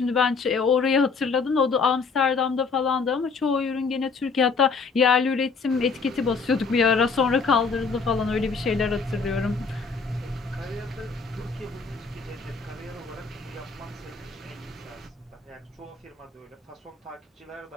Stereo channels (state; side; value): quieter; right; 4.8 dB